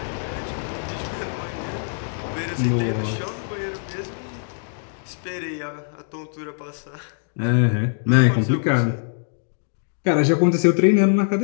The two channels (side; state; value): right; silent; digital silence